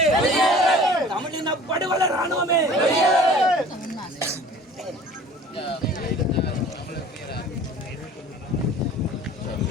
தமிழின படுகொலை ராணுவமே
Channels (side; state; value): both; normal; correlation 0.46